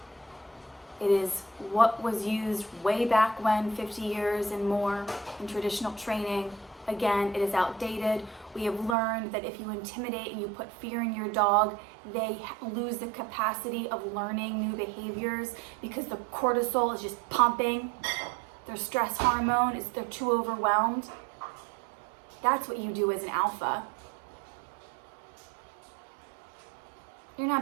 It is what was used way back when, 50 years and more in traditional training. Again, it is outdated. We have learned that if you intimidate and you put fear in your dog, they lose the capacity of learning new behaviors because the cortisol is just pumping. Their stress hormone is, they're too overwhelmed. That's what you do as an alpha. You're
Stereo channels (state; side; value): drops out; left; at 9.0 s